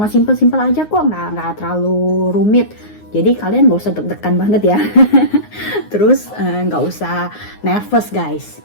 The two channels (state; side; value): late; right; 9.6 ms